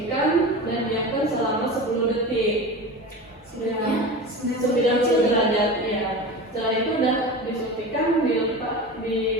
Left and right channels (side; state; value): both; normal; correlation 0.30